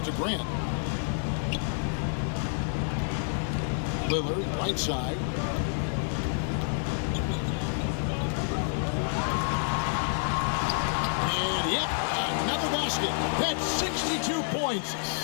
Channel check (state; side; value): silent; right; 59 dB below the other